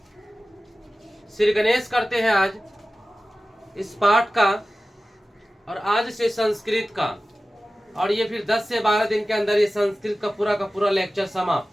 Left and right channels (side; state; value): both; normal; correlation 0.96